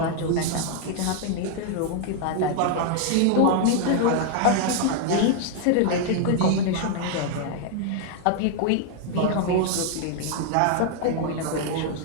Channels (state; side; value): different; both; correlation 0.00